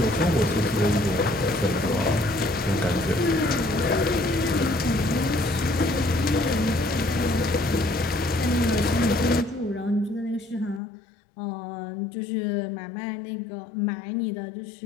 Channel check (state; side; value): drops out; right; at 10.8 s